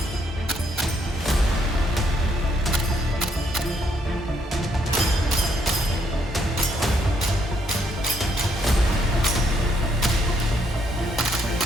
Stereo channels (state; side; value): normal; both; correlation 0.72